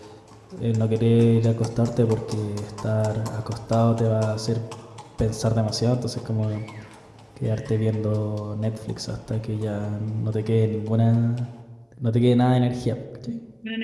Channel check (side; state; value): both; identical; correlation 1.00